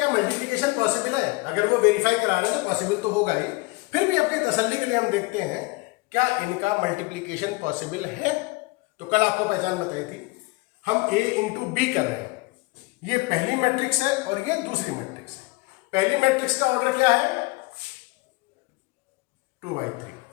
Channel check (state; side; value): quieter; right; 24.3 dB